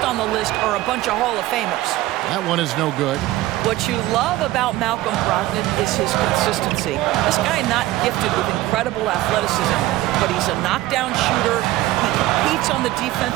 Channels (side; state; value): left; quieter; 16.8 dB